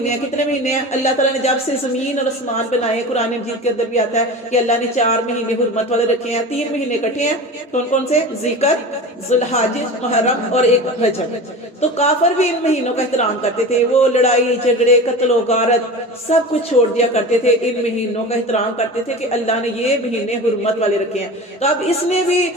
ہیں، کتنے مہینے ہیں اللہ تعالیٰ نے جب سے زمین اور آسمان بنائے، قرآن مجید کے اندر بھی آتا ہے کہ اللہ نے 4 مہینے حرمت والے رکھے ہیں. 3 مہینے کٹے ہیں، کون کون سے؟ ذکر، ذوالحج، محرم اور ایک رجب. تو کافر بھی ان مہینوں کا احترام کرتے تھے، وہ لڑائی جھگڑے قتل و غارت سب کچھ چھوڑ دیا کرتے تھے، ان مہینوں کا احترام کرتے تھے کہ اللہ نے یہ مہینے حرمت والے رکھے ہیں. تو اب اس نے بھی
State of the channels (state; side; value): normal; both; correlation 0.32